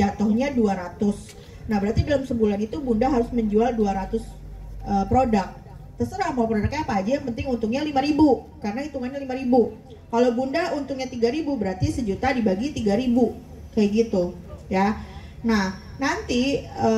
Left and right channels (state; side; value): identical; both; correlation 1.00